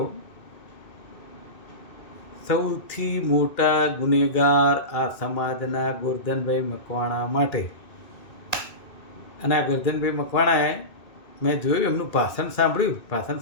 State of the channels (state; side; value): late; right; 2.2 ms